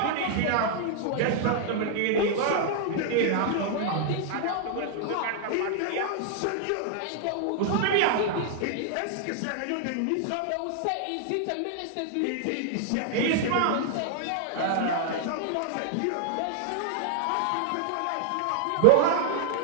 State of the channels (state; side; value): different; both; correlation 0.00